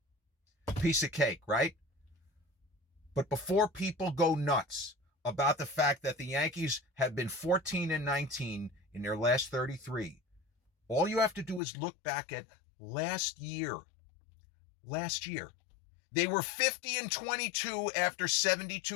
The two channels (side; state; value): right; drops out; at 11.6 s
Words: Piece of cake, right? But before people go nuts about the fact that the Yankees have been 14-19 in their last 33, all you have to do is look back at last year. Last year, they were 50-22 after